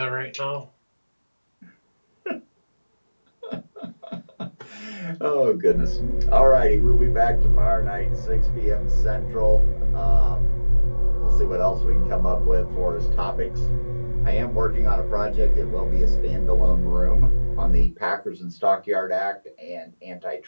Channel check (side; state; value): both; inverted; correlation -1.00